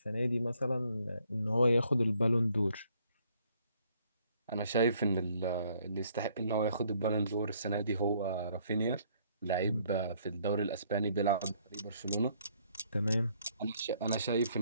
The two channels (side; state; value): both; inverted; correlation -0.66